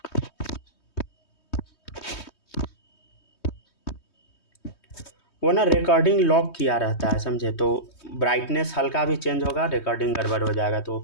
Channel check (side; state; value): right; late; 3.2 ms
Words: वो ना रिकॉर्डिंग लॉक किया रहता है, समझे, तो ब्राइटनेस हल्का भी चेंज होगा, रिकॉर्डिंग गड़बड़ हो जाएगा, तो